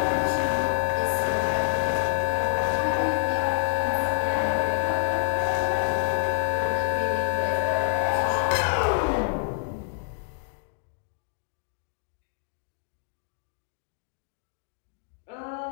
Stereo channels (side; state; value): right; silent; 60 dB below the other